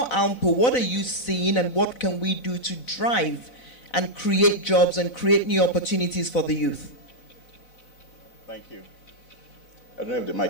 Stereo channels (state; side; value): late; right; 4.0 ms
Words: AMPO, what are you seeing and what can we do to drive and create jobs and create new opportunities for the youth? Thank you. I don't know if the mic